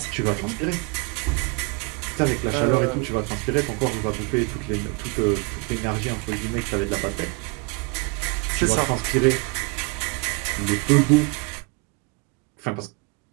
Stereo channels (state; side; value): quieter; left; 30.0 dB